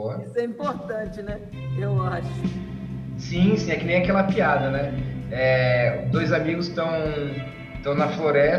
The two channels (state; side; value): identical; both; correlation 1.00